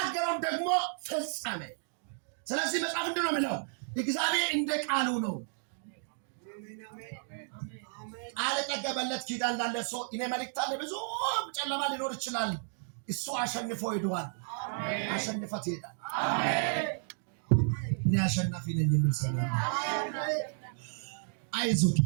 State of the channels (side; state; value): left; silent; digital silence